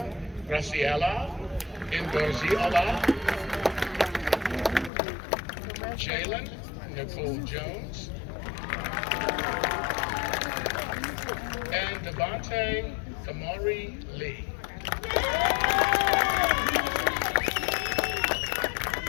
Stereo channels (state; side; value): drops out; right; at 4.9 s